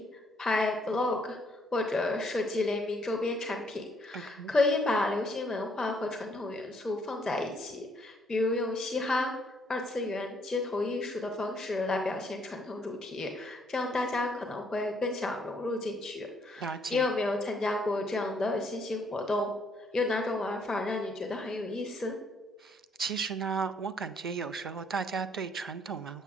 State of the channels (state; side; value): normal; both; correlation 0.69